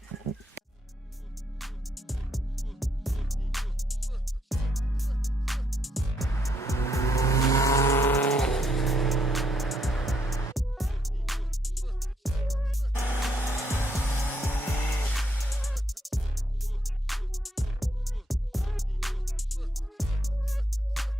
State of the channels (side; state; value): both; normal; correlation 0.75